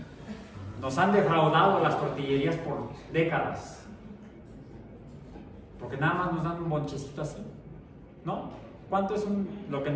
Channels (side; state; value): both; identical; correlation 1.00